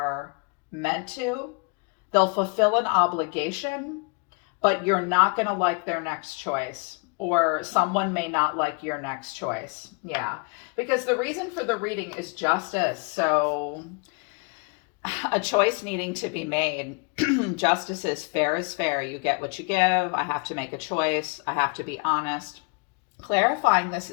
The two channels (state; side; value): quieter; right; 33.7 dB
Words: meant to. They'll fulfill an obligation, but you're not going to like their next choice, or someone may not like your next choice. Yeah, because the reason for the reading is justice. So a choice needing to be made. Justice is fair. You get what you give. I have to make a choice. I have to be honest. Clarifying this